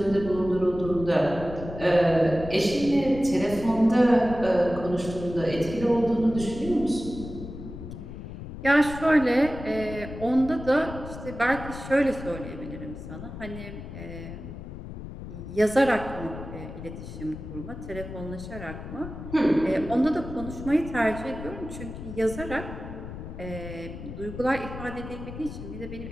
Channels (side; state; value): left; noise; rumble, 10 dB below the sound